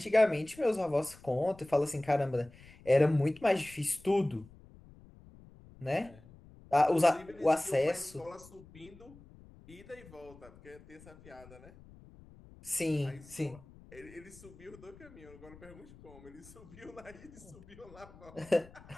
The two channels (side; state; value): left; noise; rumble, 21 dB below the sound